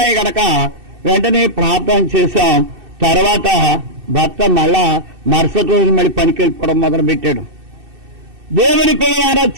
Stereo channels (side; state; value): left; late; 2.6 ms